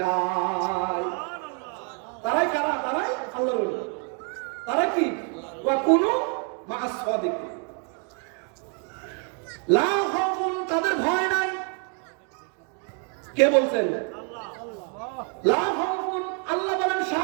তারাই কারা? তারাই আল্লাহর ওলি। তারা কি? ওয়া কুনু মা'আস সাদিকিন, লা খাউফুন, তাদের ভয় নাই। কে বলছেন? লা খাউফুন, আল্লাহ বলেন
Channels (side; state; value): left; quieter; 37.5 dB